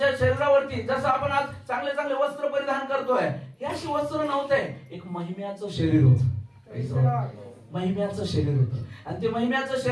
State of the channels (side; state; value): both; identical; correlation 1.00